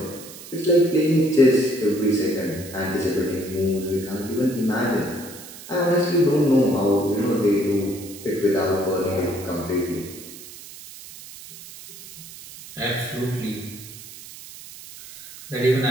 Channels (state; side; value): noise; right; hiss, 16 dB below the sound